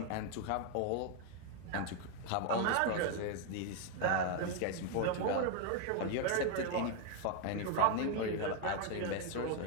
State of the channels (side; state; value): both; different; correlation 0.01